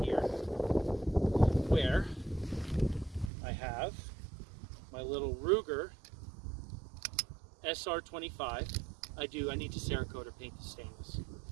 here where I have my little Ruger SR25. I need to Cerakote or paint the stainless.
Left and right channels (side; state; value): left; drops out; at 3.3 s